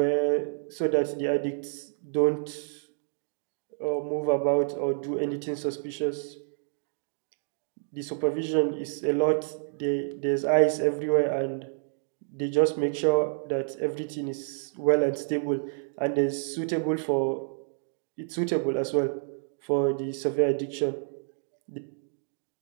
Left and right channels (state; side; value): silent; left; digital silence